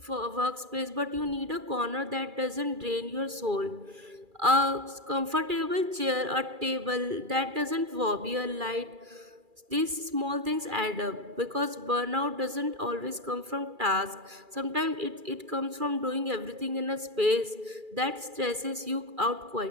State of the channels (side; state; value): left; late; 2.4 ms